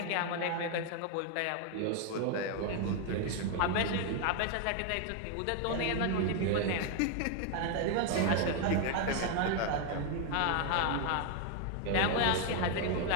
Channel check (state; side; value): different; both; correlation 0.01